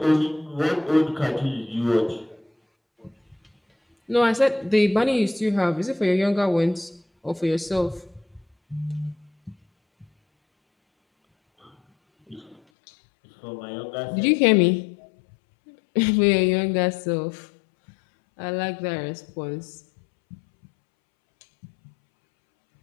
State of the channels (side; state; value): right; drops out; at 12.6 s